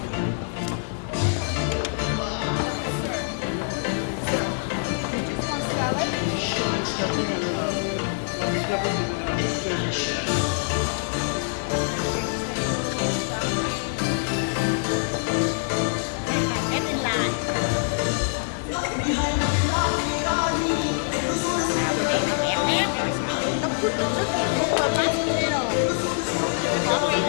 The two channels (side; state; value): right; silent; 62 dB below the other